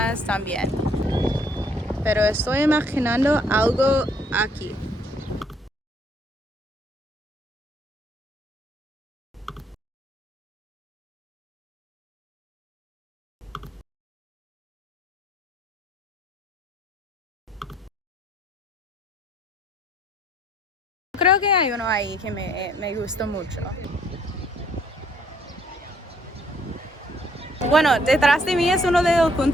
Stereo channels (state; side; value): normal; both; correlation 0.65